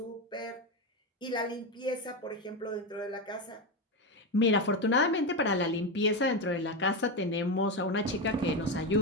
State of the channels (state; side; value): normal; both; correlation 0.13